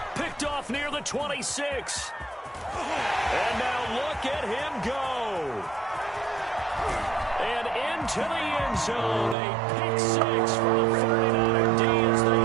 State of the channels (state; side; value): drops out; left; at 9.3 s